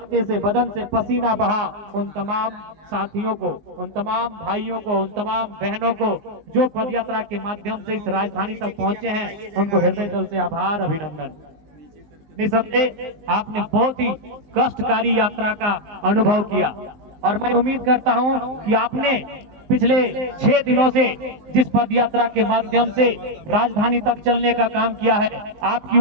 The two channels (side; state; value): left; late; 19 ms